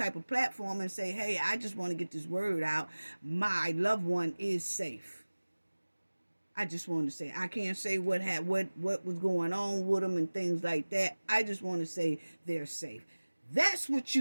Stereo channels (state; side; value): inverted; both; correlation -1.00